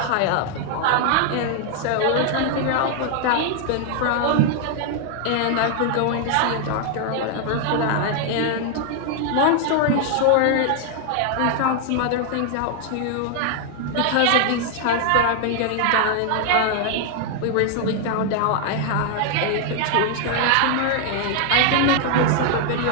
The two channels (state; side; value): different; both; correlation 0.00